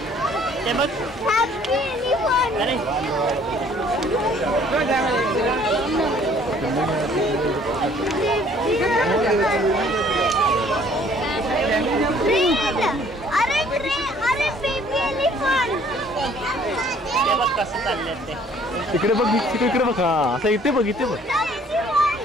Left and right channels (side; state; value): both; normal; correlation 0.58